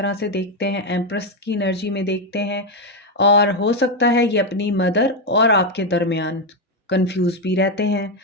से देखते हैं, एम्प्रेस की एनर्जी में देखते हैं और हो सकता है ये अपनी मदर और आपके दरमियान कंफ्यूज भी रहते हैं।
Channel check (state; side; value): normal; both; correlation 0.06